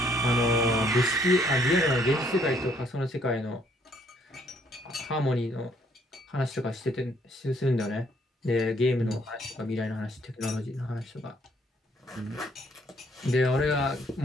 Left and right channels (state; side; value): normal; both; correlation 0.66